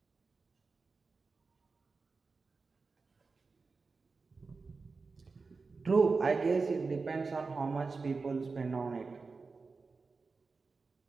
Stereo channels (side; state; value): left; quieter; 4.3 dB